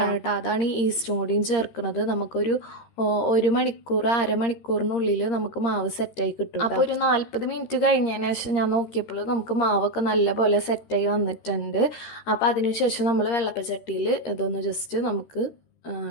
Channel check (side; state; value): right; late; 13 ms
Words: കേട്ടോ, അതാണ് ഈ ഈസ്റ്റും കൂടിയും ചേർക്കുന്നത്. നമുക്കൊരു 1 മണിക്കൂർ അരമണിക്കൂറിനുള്ളിൽ നമുക്ക് മാവ് സെറ്റായി കിട്ടും. അപ്പോൾ ഒരു 40 മിനിറ്റ് കഴിഞ്ഞതിന് ശേഷം ഞാൻ നോക്കിയപ്പോൾ നമുക്ക് മാവൊക്കെ നല്ലപോലെ സെറ്റായി വന്നിട്ടുണ്ട്. അപ്പോൾ അതിനുശേഷം നമ്മൾ വെള്ളപ്പച്ചട്ടിയിൽ ഇതൊന്ന് ജസ്റ്റ് നമുക്ക്